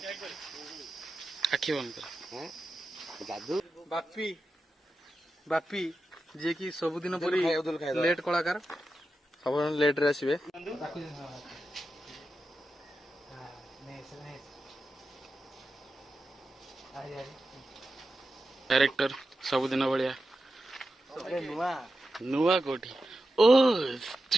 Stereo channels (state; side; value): normal; both; correlation 0.91